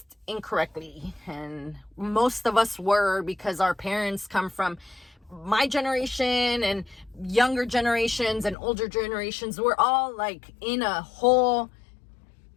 incorrectly, and most of us were, because our parents come from my generation and younger generations and older generations. We're all like in a whole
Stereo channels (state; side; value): drops out; right; at 8.6 s